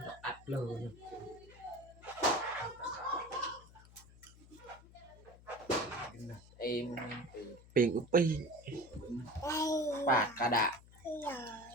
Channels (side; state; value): left; noise; hum, 22 dB below the sound